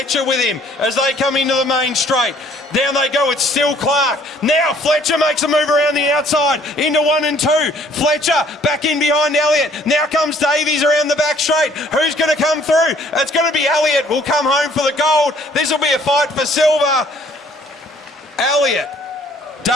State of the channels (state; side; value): normal; both; correlation 0.59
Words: with him as they come into the main straight. Down they go, it's still Clark. Now Fletcher makes a move around the outside into 1 and 2. Fletcher back in behind Elliott. Now comes Davies around the back straight. Who's going to come through? It's going to be Elliott. Will come home for the gold. This will be a fight for silver. Elliott,